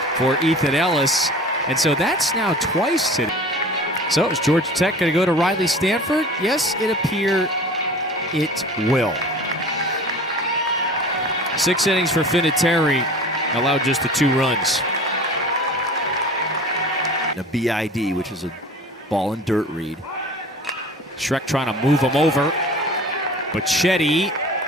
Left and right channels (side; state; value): both; normal; correlation 0.41